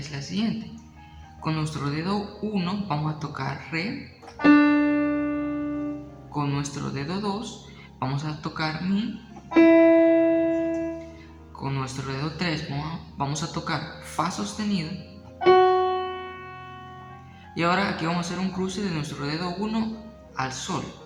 la siguiente. Con nuestro dedo 1 vamos a tocar Re. Con nuestro dedo 2 vamos a tocar Mi. Con nuestro dedo 3 vamos a tocar Fa sostenido. Y ahora aquí vamos a hacer un cruce de nuestro dedo 1 al Sol.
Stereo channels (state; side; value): identical; both; correlation 1.00